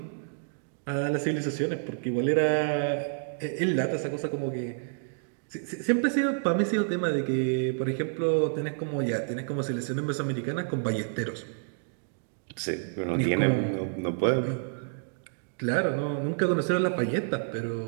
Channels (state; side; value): silent; left; digital silence